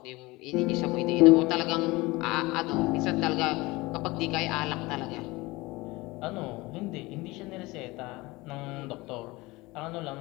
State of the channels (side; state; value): right; quieter; 22.0 dB